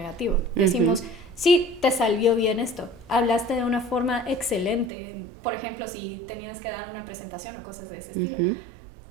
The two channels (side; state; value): left; drops out; at 4.9 s